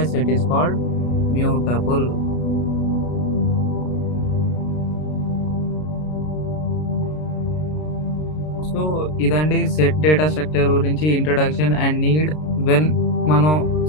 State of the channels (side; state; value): right; late; 33 ms